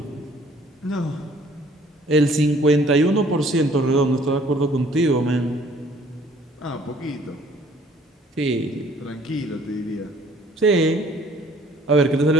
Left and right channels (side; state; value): both; normal; correlation 0.57